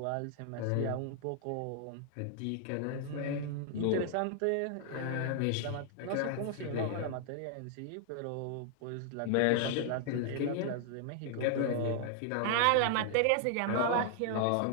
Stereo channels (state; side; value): different; both; correlation 0.00